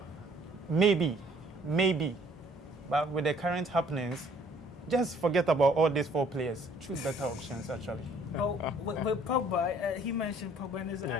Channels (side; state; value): both; normal; correlation 0.59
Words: maybe. But with the current happenings, just forget about all these 4 players. Choose better options, actually. Oh, with Pogba, he mentioned Pogba, and it's